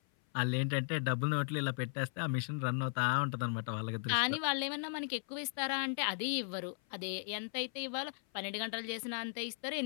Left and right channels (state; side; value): silent; right; 53 dB below the other